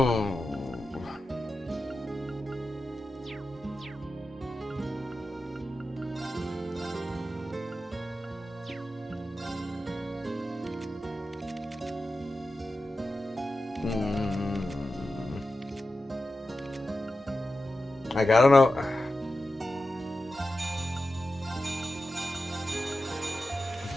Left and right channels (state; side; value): normal; both; correlation 0.92